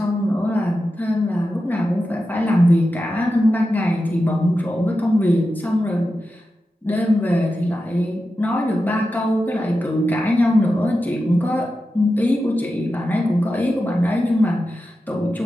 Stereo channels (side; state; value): both; normal; correlation 0.91